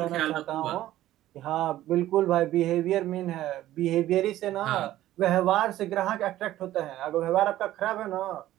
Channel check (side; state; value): left; quieter; 14.2 dB